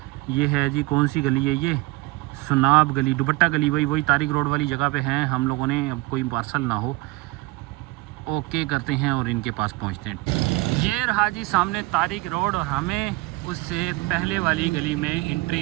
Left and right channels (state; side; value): quieter; left; 21.6 dB